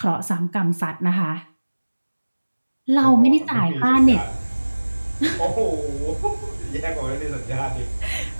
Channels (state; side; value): inverted; both; correlation -1.00